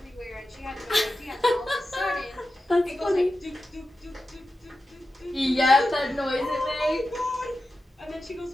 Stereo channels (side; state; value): both; normal; correlation 0.92